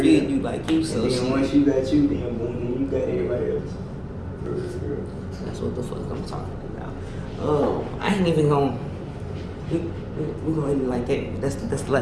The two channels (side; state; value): both; identical; correlation 1.00